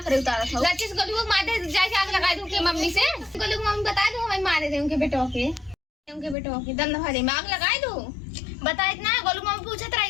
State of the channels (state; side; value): drops out; right; at 6.4 s